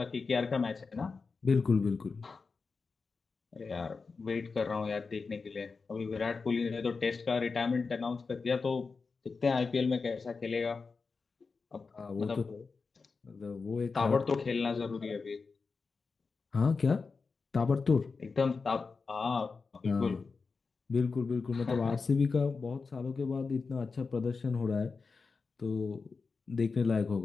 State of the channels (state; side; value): quieter; right; 4.6 dB